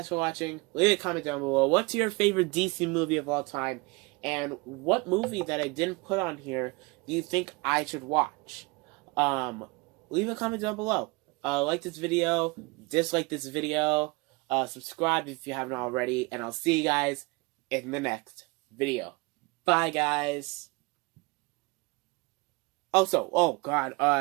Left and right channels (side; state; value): left; quieter; 26.2 dB